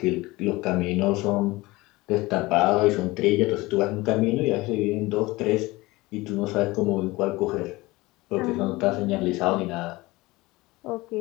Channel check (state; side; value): quieter; right; 20.9 dB